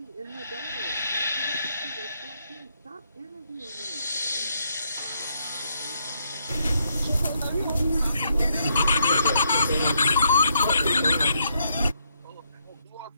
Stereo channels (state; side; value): inverted; both; correlation -0.75